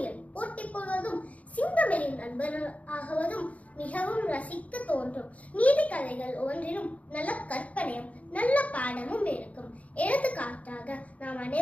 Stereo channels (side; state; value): right; late; 0.068 ms